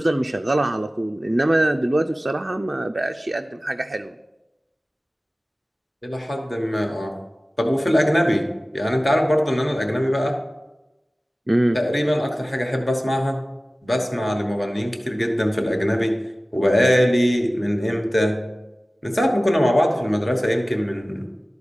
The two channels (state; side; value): normal; both; correlation 0.97